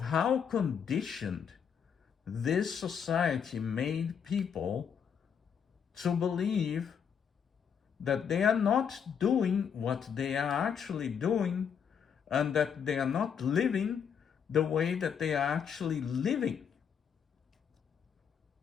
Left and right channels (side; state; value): right; quieter; 7.4 dB